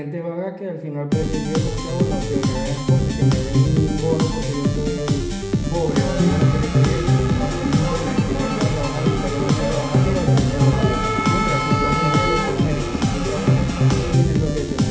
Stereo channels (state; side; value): identical; both; correlation 1.00